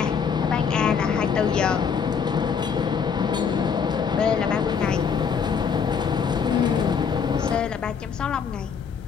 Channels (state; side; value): quieter; right; 6.5 dB